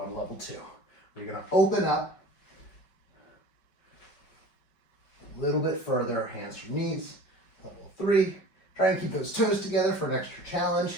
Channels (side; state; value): right; late; 5.2 ms